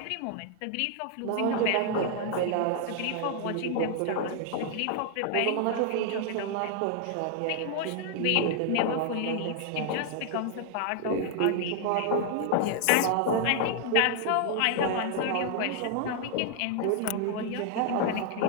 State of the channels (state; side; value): different; both; correlation 0.00